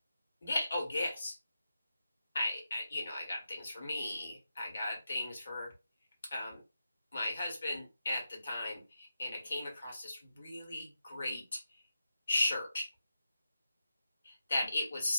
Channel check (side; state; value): both; inverted; correlation -0.88